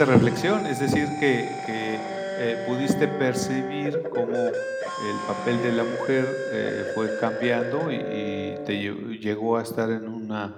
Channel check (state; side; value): identical; both; correlation 1.00